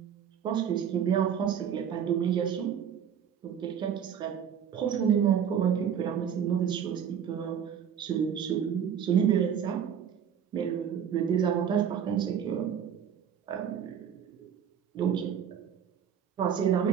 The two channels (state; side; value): quieter; left; 8.4 dB